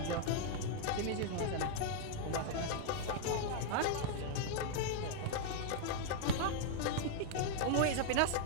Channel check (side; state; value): both; different; correlation -0.01